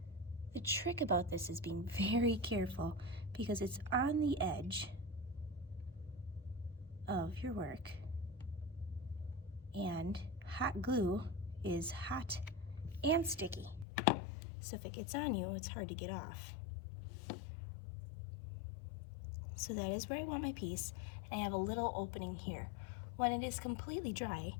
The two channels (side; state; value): right; drops out; at 13.9 s